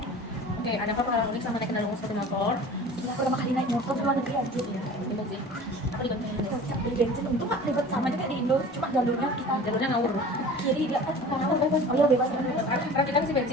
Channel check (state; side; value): normal; both; correlation 0.41